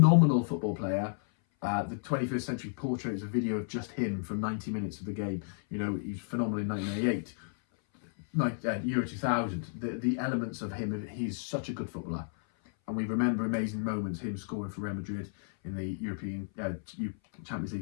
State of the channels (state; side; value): silent; right; 56 dB below the other